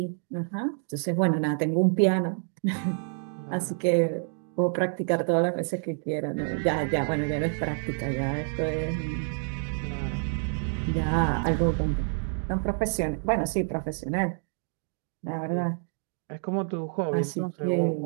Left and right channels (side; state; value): left; silent; 59 dB below the other